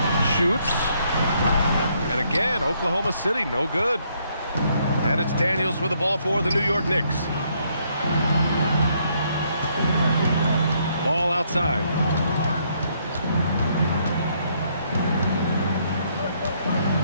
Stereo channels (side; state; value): both; inverted; correlation -0.71